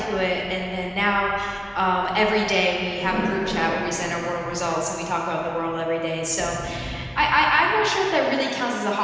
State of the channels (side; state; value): both; identical; correlation 1.00